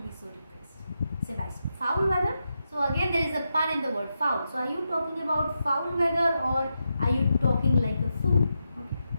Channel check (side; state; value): both; inverted; correlation -0.86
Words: be so depressed. Sebastian, foul weather. So again, there is a pun in the word foul. So are you talking about foul weather or are you talking like a fool? Okay,